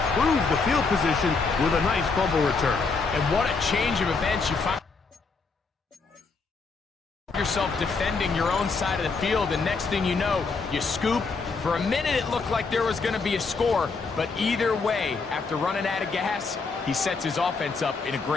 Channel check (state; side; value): quieter; right; 4.5 dB